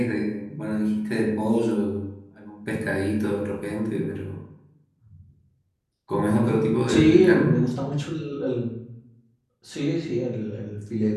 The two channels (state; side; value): identical; both; correlation 1.00